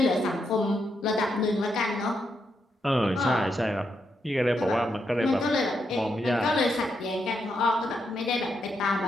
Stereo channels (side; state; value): both; normal; correlation 0.81